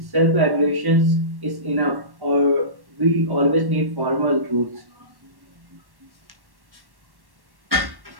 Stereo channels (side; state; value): left; late; 1.1 ms